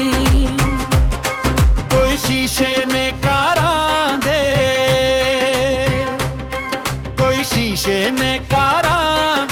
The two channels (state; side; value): identical; both; correlation 1.00